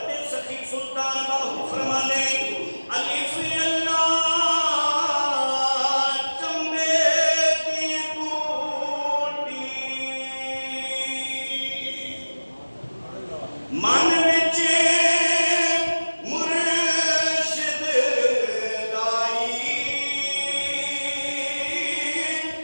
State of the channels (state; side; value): inverted; both; correlation -1.00